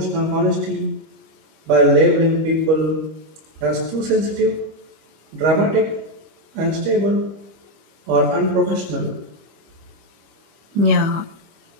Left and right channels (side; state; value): left; late; 25 ms